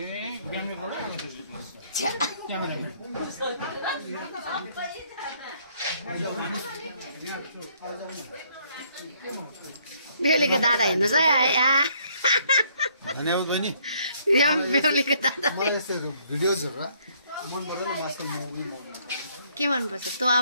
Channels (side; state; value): both; inverted; correlation -0.66